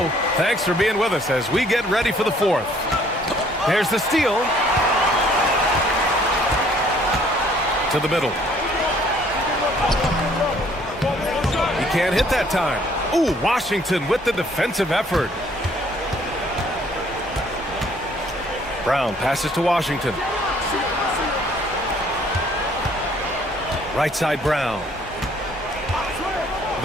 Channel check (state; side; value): normal; both; correlation 0.60